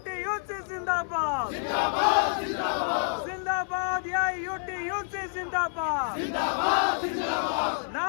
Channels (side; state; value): right; silent; digital silence